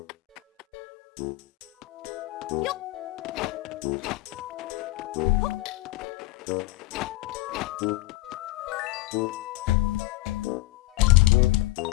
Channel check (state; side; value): quieter; right; 18.6 dB